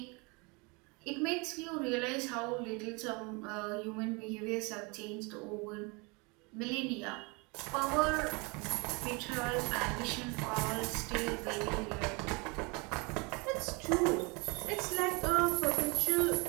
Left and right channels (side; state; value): left; quieter; 29.2 dB